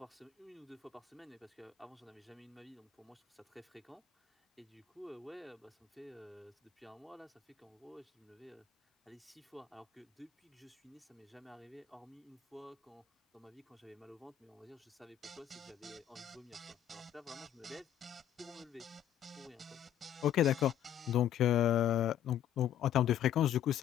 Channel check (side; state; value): right; quieter; 10.4 dB